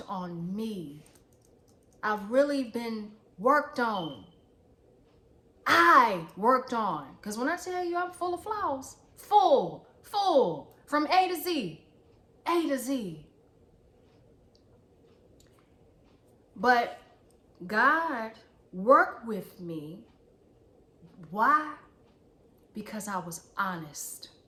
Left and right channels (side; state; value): both; identical; correlation 1.00